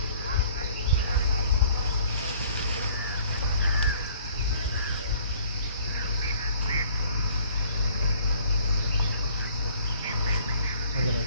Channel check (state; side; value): inverted; both; correlation -0.57